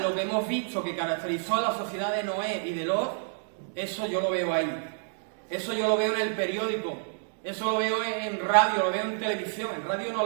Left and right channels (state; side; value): silent; left; digital silence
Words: lo que hemos visto que caracterizó a la sociedad de Noé y de Lot, eso yo lo veo ahí. Eso yo lo veo en el periódico. Eso lo veo en radio, lo veo en televisión. En radio